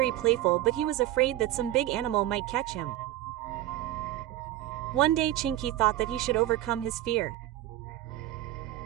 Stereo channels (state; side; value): quieter; left; 14.4 dB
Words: playful, but he was afraid that some big animal might catch him. One day Chinky thought that he should overcome his fear.